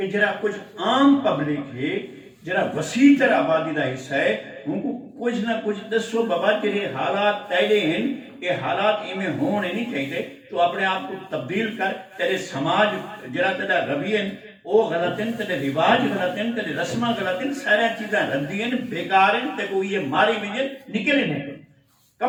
جرا کچھ عام پبلک ہے جرا وسیع تر آبادی کا حصہ ہے ان کو کچھ نہ کچھ دسو بابا تیرے حالات تیرے ہیں یہ حالات ایویں ہونے نہیں چاہیے تو اپنے آپ کو تبدیل کر تیرے سماج جرا تیرا رویے وہ غلط ہیں تیرے رواج غلط ہیں تیرے رسماں غلط ہیں سارا چیزاں ردی ہیں بیکار ہیں تے کوئی یہ ماری بھی نکلے نہیں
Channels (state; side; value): identical; both; correlation 1.00